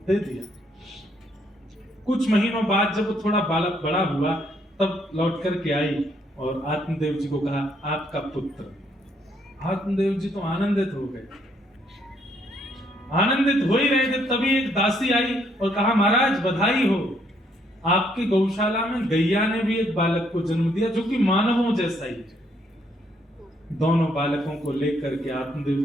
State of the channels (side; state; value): both; normal; correlation 0.70